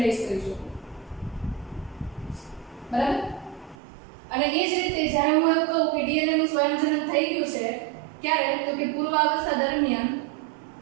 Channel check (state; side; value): drops out; left; at 3.8 s